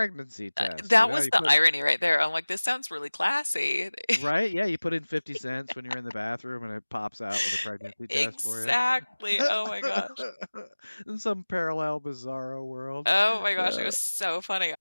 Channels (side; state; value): both; inverted; correlation -1.00